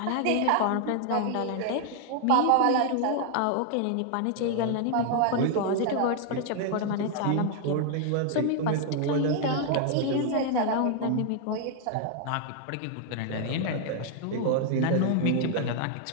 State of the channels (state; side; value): different; both; correlation 0.00